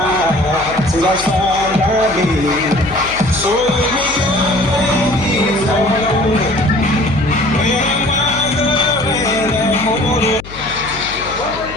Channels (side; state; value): left; noise; hum, 15 dB below the sound